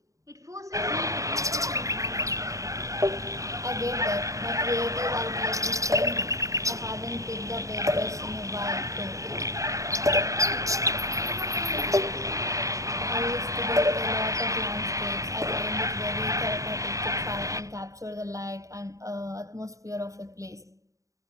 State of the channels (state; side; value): late; left; 0.16 ms